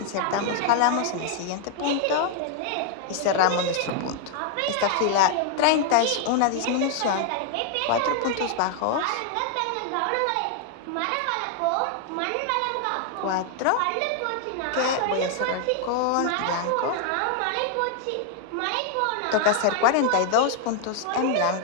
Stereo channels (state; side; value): different; both; correlation 0.00